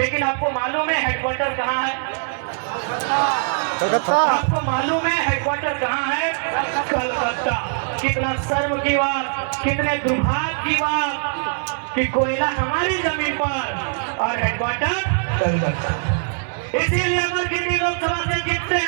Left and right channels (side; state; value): left; silent; digital silence